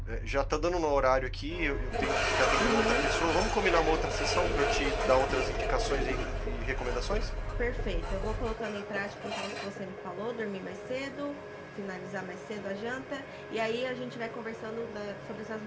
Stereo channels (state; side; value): identical; both; correlation 1.00